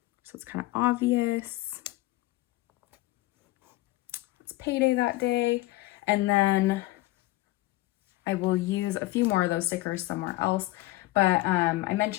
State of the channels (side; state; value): right; quieter; 18.5 dB